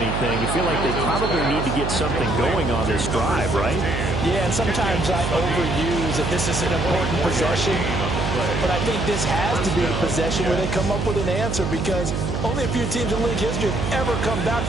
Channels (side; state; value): right; noise; hum, 2 dB below the sound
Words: you feel like they probably need to get something going on this drive, right? Yeah, and sometimes I overuse that this is an important possession, but I think this has to be the possession where they come up with an answer because only a few teams in league history have ever come back